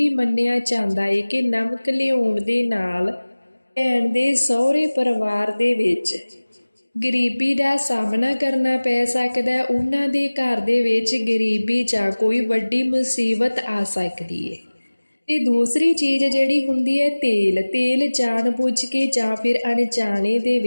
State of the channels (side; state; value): both; inverted; correlation -1.00